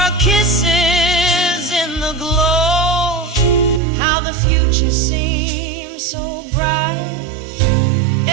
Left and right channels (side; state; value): left; drops out; at 3.8 s